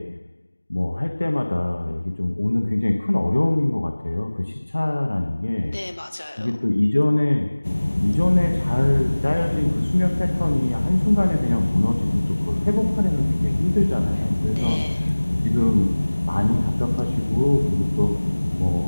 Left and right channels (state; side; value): inverted; both; correlation -1.00